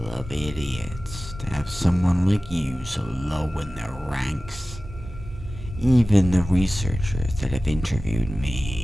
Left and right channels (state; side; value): normal; both; correlation 0.96